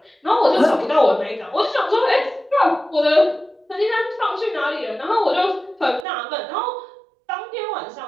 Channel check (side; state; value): left; drops out; at 6.1 s